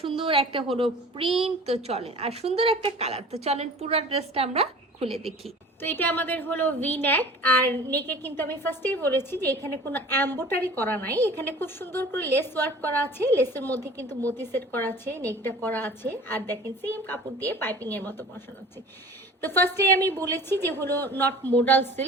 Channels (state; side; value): normal; both; correlation 0.43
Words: সুন্দর একটা হলো প্রিন্ট। তো চলেন, আর সুন্দর একটা কালার। তো চলেন পুরো ড্রেসটা আমরা খুলে দেখি। তো এটা আমাদের হলো ভি নেক, আর নেকে কিন্তু আমি ফার্স্টেই বলেছি যে এখানে কোনো এমব্রয়ডারি করা নাই, এখানে খুব সুন্দর করে লেস ওয়ার্ক করা আছে, লেসের মধ্যে কিন্তু মতি সেট করা আছে, নেকটা করা আছে, আর দেখেন সেম কাপড় দিয়ে পাইপিং এর মতো বসানো আছে। তো ফার্স্টে আমি বলেছি যে হলো নট মডেল